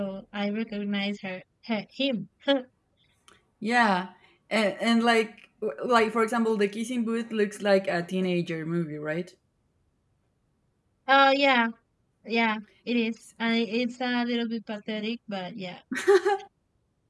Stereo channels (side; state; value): both; identical; correlation 1.00